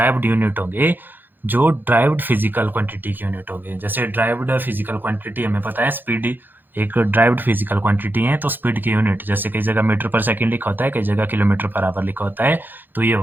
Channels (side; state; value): left; late; 0.091 ms